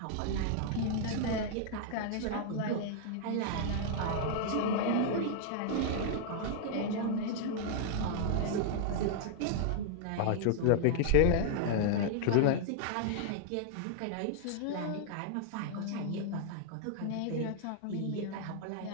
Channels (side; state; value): both; different; correlation -0.01